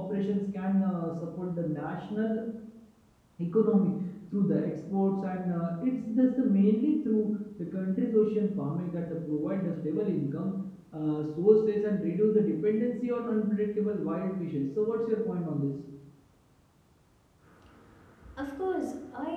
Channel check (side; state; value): both; identical; correlation 1.00